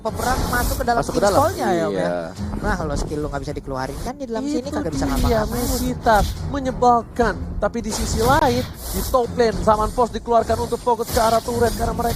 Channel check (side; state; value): both; identical; correlation 1.00